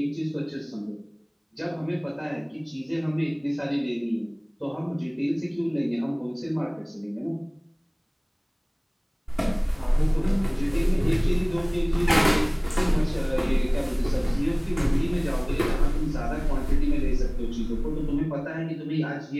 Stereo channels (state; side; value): identical; both; correlation 1.00